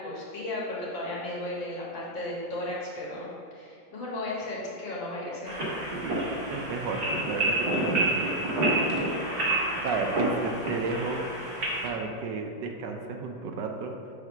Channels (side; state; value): both; normal; correlation -0.03